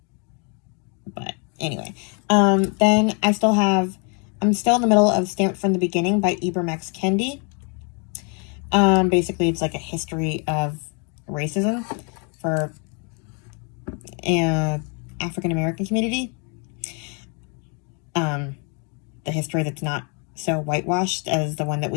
But anyway, then I'm still in the middle of Stamped from the Beginning by Ibram X. Kendi. Basically it's like a history of racism for African American community. The history that's not so whitewashed as the one that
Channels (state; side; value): quieter; right; 36.9 dB